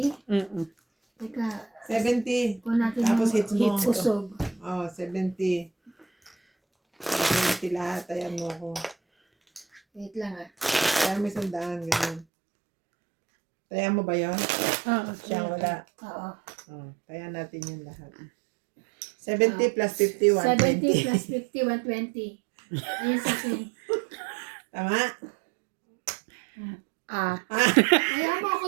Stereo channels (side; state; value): left; drops out; at 12.2 s